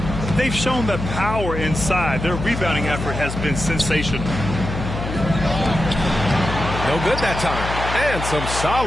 They've shown the power inside. Their rebounding effort has been sensational. No good that time. And some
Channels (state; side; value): noise; left; hum, 6 dB below the sound